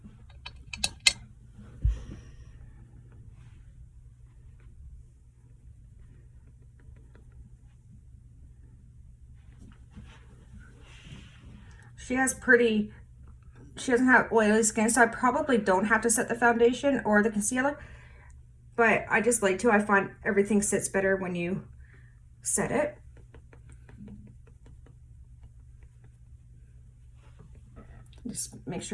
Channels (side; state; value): both; identical; correlation 1.00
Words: She doesn't have oily skin, so I probably don't have to set the foundation or the concealer, but I just like to. I find everything sits better when you set it. Just make